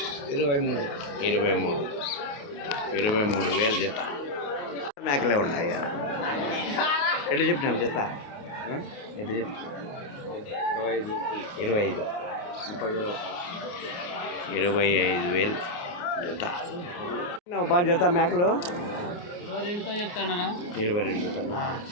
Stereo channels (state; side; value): late; right; 28 ms